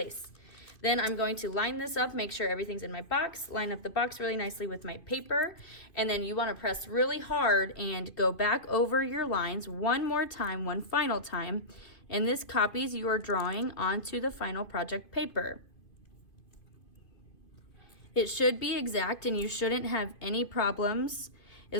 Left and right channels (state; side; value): late; right; 2.5 ms